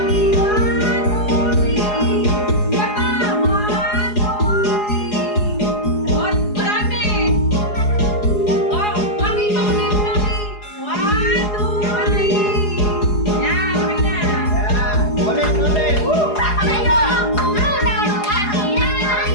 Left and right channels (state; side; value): late; right; 4.8 ms